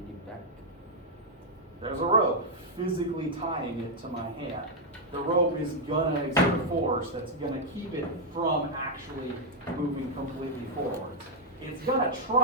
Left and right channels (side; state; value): both; normal; correlation -0.03